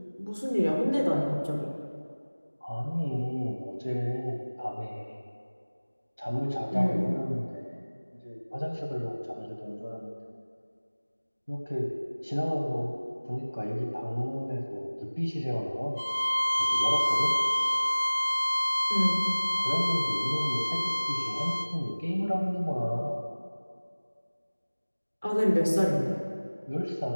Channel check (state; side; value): inverted; both; correlation -1.00